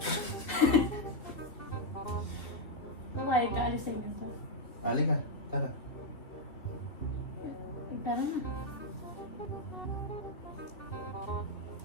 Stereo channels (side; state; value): right; late; 2.7 ms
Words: Palag ka, alis tayo ganito. Ali ka. Tara. Tara na.